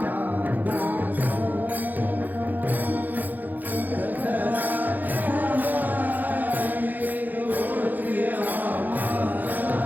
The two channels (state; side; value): late; left; 0.084 ms